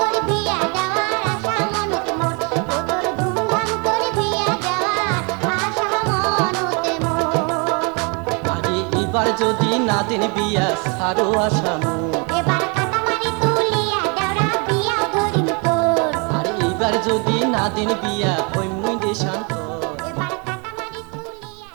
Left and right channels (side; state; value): left; quieter; 33.6 dB